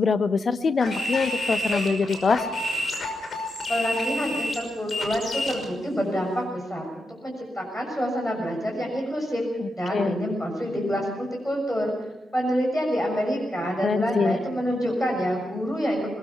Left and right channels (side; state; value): both; normal; correlation 0.86